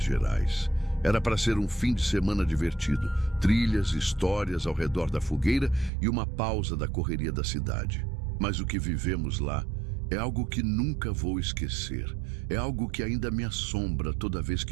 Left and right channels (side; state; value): left; drops out; at 5.9 s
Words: Gerais. Era para ser um fim de semana divertido, trilhas, histórias ao redor da fogueira e uma pausa da correria da cidade. Mas o que vivemos lá é algo que nunca vou esquecer. É algo que ainda me assombra toda vez